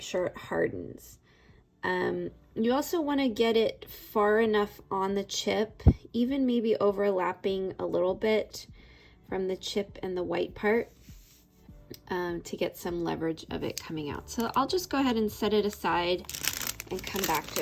sure it hardens. You also want to get it far enough on the chip, even maybe overlapping a little bit from the chip and the white part, to get some leverage of it coming out. So I'll just go ahead and set it aside and come back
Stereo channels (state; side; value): identical; both; correlation 1.00